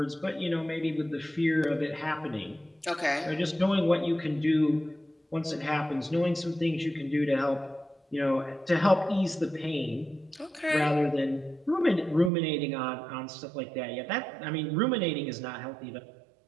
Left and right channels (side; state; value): left; drops out; at 12.3 s